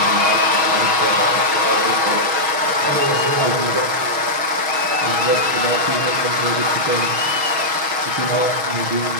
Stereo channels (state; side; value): late; left; 6.4 ms